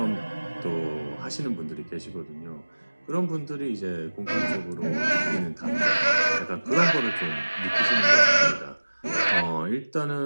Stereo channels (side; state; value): both; inverted; correlation -1.00